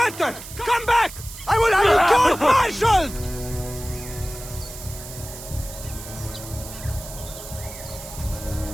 Come back! I will have you court-martialed!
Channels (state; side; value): noise; right; hiss, 13 dB below the sound